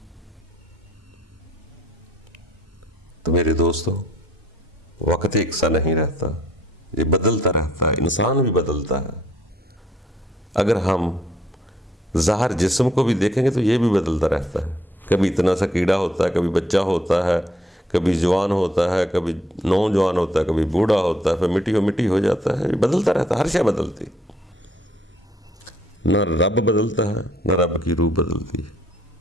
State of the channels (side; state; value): both; normal; correlation 0.66